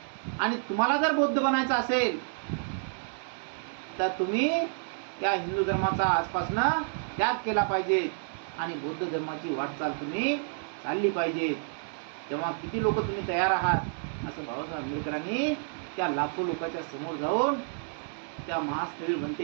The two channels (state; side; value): silent; left; digital silence